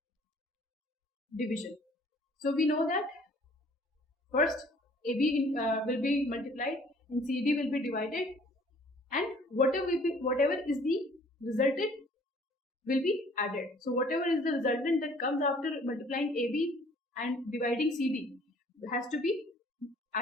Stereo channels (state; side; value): normal; both; correlation 0.56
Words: division. So we know that first AB will be multiplied and CD will be divided, and whatever is the resultant will be added. So whatever is the resultant that comes after multiplying AB and dividing CD has to be